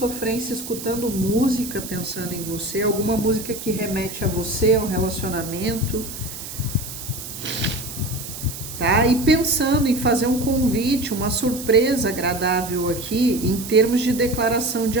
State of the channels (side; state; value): right; noise; hiss, 10 dB below the sound